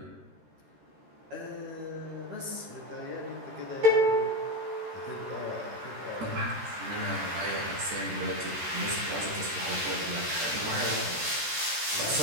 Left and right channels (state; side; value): late; left; 13 ms